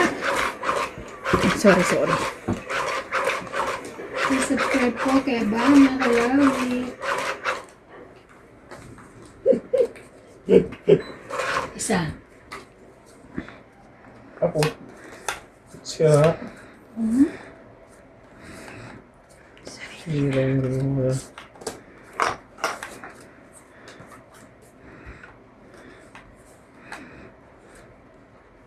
Sorry. Subscribe po kay Bama Kalawi. Isa. Ako. Siya. Sorry.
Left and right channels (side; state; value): both; identical; correlation 1.00